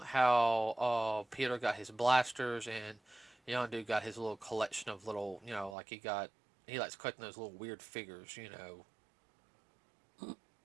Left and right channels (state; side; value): drops out; left; at 5.8 s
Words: how Peter got his blasters and Yondu got his little collection of little, like he likes collecting those little weird figures,